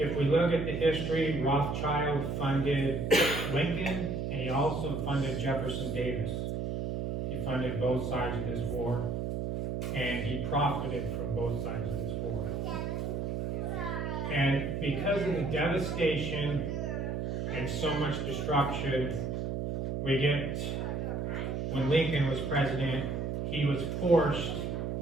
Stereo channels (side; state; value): right; noise; hum, 2 dB below the sound